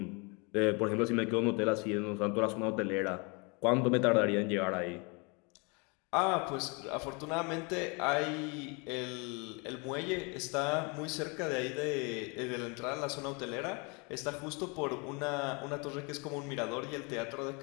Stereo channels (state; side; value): quieter; right; 31.1 dB